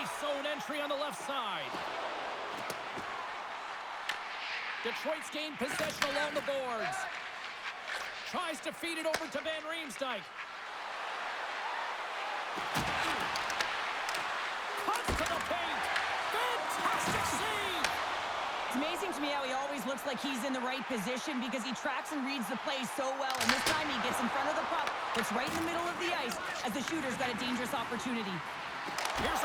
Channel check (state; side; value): identical; both; correlation 1.00